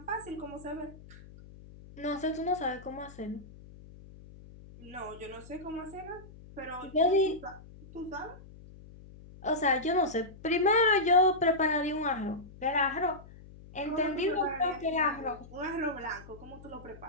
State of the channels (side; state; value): left; noise; hum, 19 dB below the sound